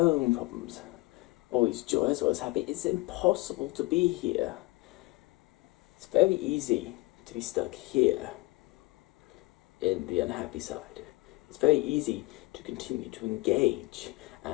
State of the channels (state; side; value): quieter; right; 22.1 dB